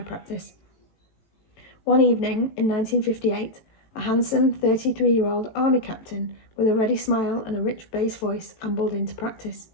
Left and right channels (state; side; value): late; right; 18 ms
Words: practice. One evening in 1958, a handsome 33-year-old army captain with a ready smile and a rich bass voice ambled into practice.